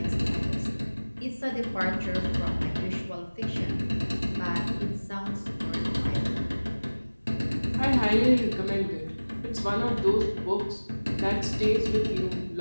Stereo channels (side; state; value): both; inverted; correlation -1.00